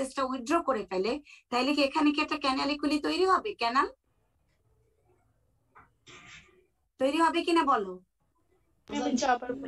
উইথড্র করে ফেলে, তাহলে কি এখানে কি একটা ক্যানালিকুলি তৈরি হবে? ক্যানাল তৈরি হবে কিনা বলো? আবার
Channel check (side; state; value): both; identical; correlation 1.00